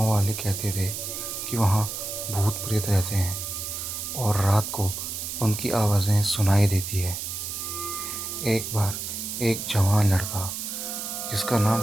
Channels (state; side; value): noise; right; hiss, 5 dB below the sound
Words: वाले कहते थे कि वहाँ भूत प्रेत रहते हैं और रात को उनकी आवाज़ें सुनाई देती है। एक बार एक जवान लड़का जिसका नाम